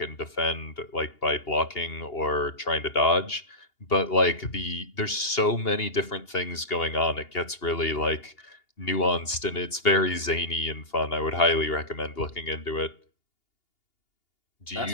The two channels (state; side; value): late; right; 2.8 ms